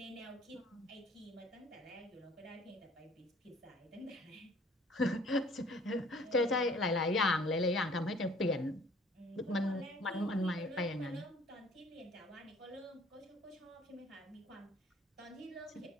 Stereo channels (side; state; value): both; normal; correlation 0.55